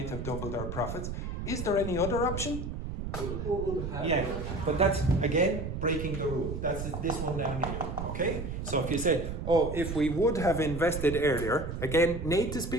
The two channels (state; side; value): noise; right; rumble, 6 dB below the sound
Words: have doubled our profits. Is there any other option? Yeah, but that's, again, breaking the rule. That's this one down here, okay? So if you said, oh, if we would have invested earlier, again, native